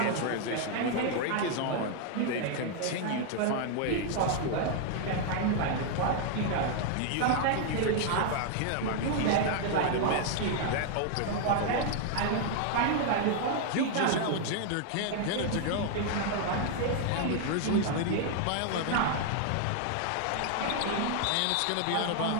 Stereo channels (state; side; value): different; both; correlation 0.00